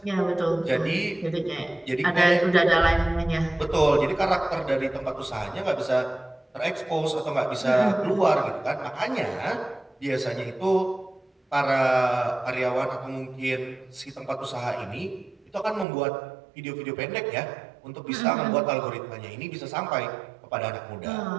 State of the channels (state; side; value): drops out; left; at 15.9 s